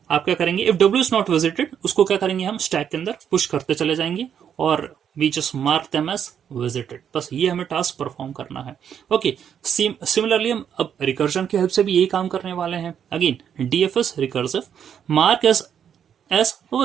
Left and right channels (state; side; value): quieter; left; 8.5 dB